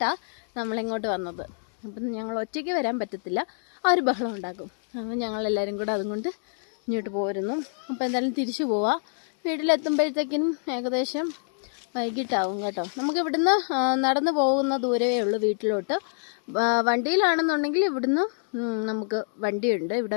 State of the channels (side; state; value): right; silent; digital silence